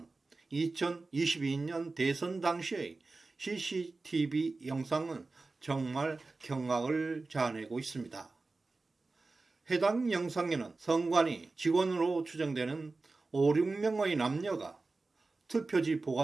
2022년 대선 당시의 CCTV 영상은 정말 경악을 자아내고 있습니다. 해당 영상에는 성관위 직원으로 추정되는 5, 6명의 남녀가 투표지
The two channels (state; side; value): quieter; left; 3.6 dB